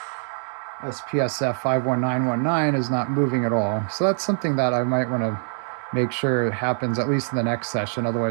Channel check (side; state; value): left; silent; digital silence